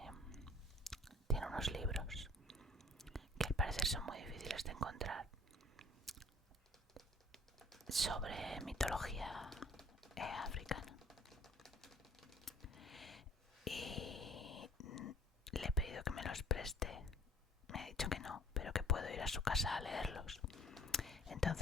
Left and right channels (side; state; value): both; normal; correlation 0.53